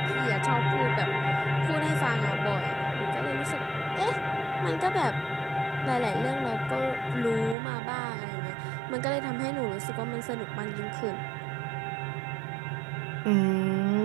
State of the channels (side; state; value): left; drops out; at 7.6 s